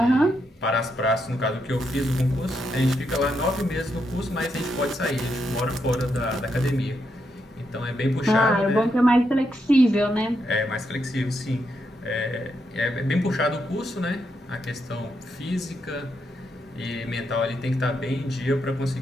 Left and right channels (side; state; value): both; normal; correlation 0.81